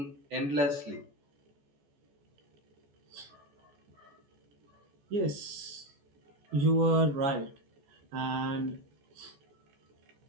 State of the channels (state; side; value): late; left; 14 ms